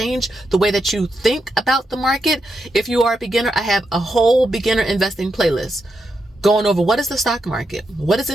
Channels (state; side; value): normal; both; correlation 0.84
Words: the way that you think about the market. If you are a beginner, I have a whole beginner investing playlist going over what is the stock market, what is